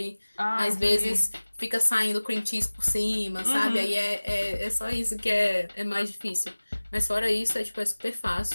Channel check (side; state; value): both; inverted; correlation -1.00